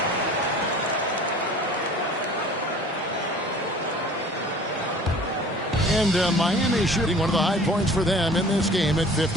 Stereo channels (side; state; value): both; normal; correlation 0.47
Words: And Miami shooting one of the high points for them in this game at